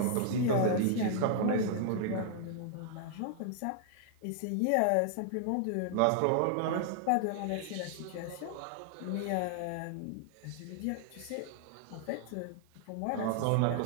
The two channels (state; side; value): different; both; correlation -0.01